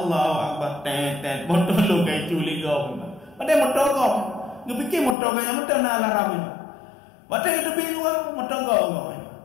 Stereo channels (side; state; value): right; drops out; at 5.2 s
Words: Akbar, tet, motor lo kayak culi kau. Padahal motor kau, ngepikir motor kaya motor nak alarm ni. Padahal kita beli luar motor kau.